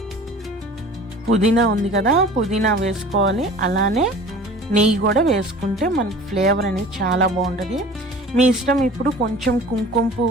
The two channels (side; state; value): both; normal; correlation 0.43